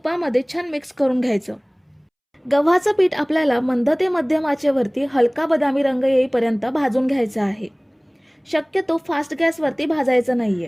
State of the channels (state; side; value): identical; both; correlation 1.00